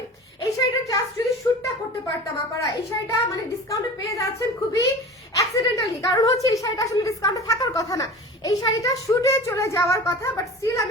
এই শাড়িটা জাস্ট যদি শুটটা করতে পারতাম আপনারা, এই শাড়িটা মানে ডিসকাউন্টে পেয়ে যাচ্ছেন খুবই অ্যাক্সিডেন্টালি, কারণ হচ্ছে এই শাড়িটা আসলে ডিসকাউন্টে থাকার কথা না, এই শাড়িটা শুটে চলে যাওয়ার কথা, বাট স্টিল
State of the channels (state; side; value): normal; both; correlation 0.36